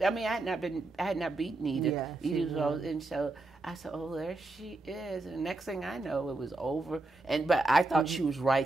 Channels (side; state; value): left; quieter; 3.1 dB